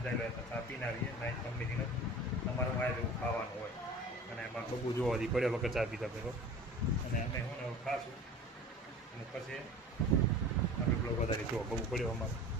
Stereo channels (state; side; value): normal; both; correlation 0.40